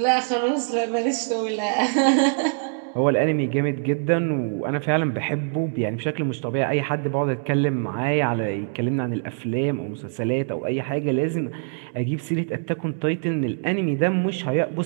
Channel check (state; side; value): silent; left; digital silence